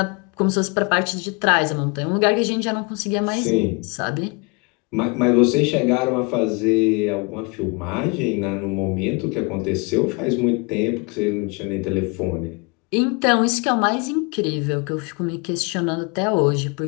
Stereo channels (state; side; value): quieter; right; 30.0 dB